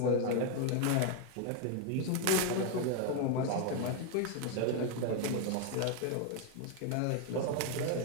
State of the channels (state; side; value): different; both; correlation 0.01